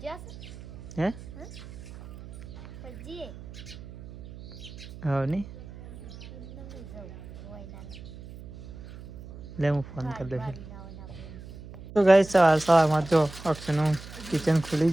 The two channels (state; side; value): noise; right; hum, 14 dB below the sound